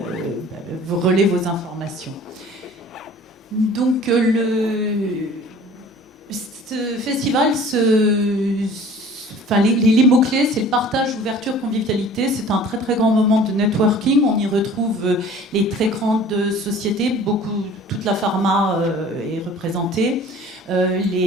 vous relaient vos informations. Donc, ce festival, les mots-clés, c'est le partage, ouverture, convivialité. C'est un très très grand moment de networking. On y retrouve les très grandes sociétés, toute la pharma est représentée,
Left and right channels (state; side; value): normal; both; correlation 0.47